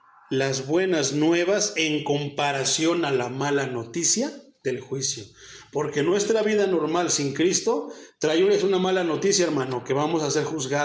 Las buenas nuevas en comparación a la mala noticia del juicio. Porque nuestra vida normal sin Cristo trae una mala noticia, hermano, que vamos a ser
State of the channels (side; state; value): both; identical; correlation 1.00